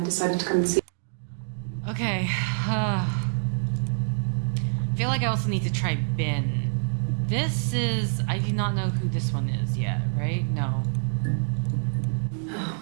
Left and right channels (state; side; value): silent; left; digital silence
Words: I decided to come and see you. Okay, I feel like I also need to try Ben. This is... I do not know who this one is yet, right? No.